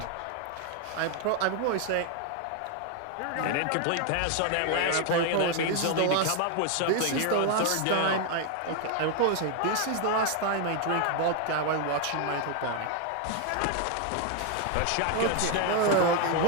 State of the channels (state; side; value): different; both; correlation 0.01